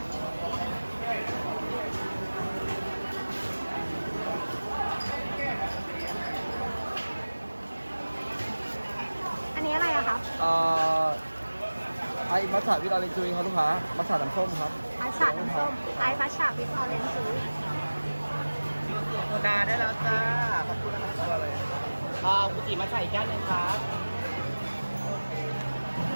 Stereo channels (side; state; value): both; inverted; correlation -1.00